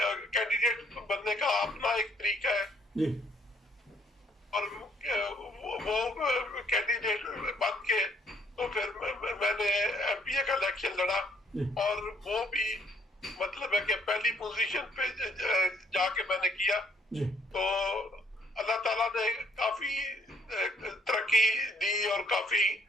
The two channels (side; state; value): both; normal; correlation 0.66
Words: کینڈیڈیٹ بننے کا اپنا ایک طریقہ ہے. جی. اور وہ کینڈیڈیٹ بن کے تو پھر میں نے MPA کا الیکشن لڑا اور وہ بھی مطلب ہے کہ پہلی پوزیشن پہ جا کے میں نے کیا. تو اللہ تعالیٰ نے کافی ترقی دی اور کافی